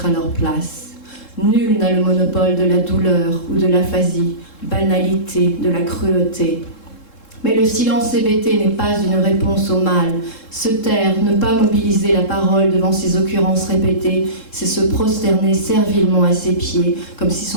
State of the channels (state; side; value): late; right; 3.7 ms